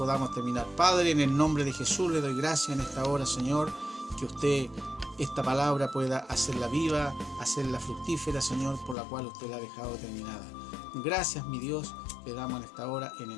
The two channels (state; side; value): drops out; right; at 9.0 s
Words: terminar. Padre, en el nombre de Jesús le doy gracias en esta hora, Señor, que usted, esta palabra, pueda hacerla viva, hacerla fructífera, Señor, por la cual usted la ha dejado determinada. Gracias, mi Dios, le damos en esta hora en el